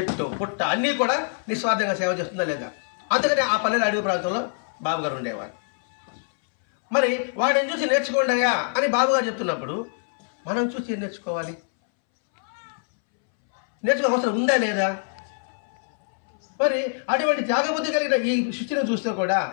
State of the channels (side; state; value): right; silent; 62 dB below the other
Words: పుట్ట అన్నీ కూడా నిస్వార్థంగా సేవ చేస్తుందా లేదా? అందుకని ఆ పల్లెల అడవి ప్రాంతంలో బాబుగారు ఉండేవాడు. మరి వాడిని చూసి నేర్చుకోండి అయ్యా అని బాబుగారు చెప్తున్నప్పుడు మనం చూసి ఏం నేర్చుకోవాలి? నేర్చుకో అవసరం ఉందా లేదా? మరి అటువంటి త్యాగబుద్ధి కలిగిన ఈ సృష్టిని చూస్తే కూడా